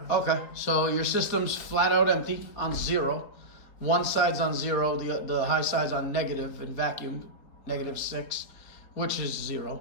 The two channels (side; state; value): right; late; 4.1 ms